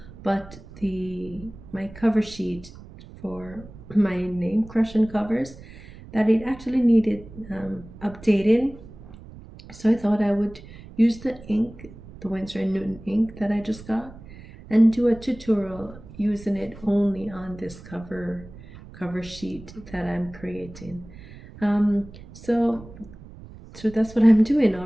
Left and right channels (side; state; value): right; noise; rumble, 18 dB below the sound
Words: but my cover sheet for my name, CrushonCovers, that it actually needed updating. So I thought I would use the ink, the Winsor & Newton ink that I just got, and do a tutorial using it only on this cover sheet that I'm creating. So that's what I'm doing. All